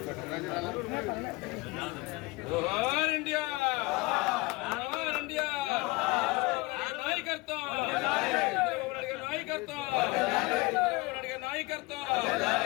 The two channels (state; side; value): quieter; right; 23.4 dB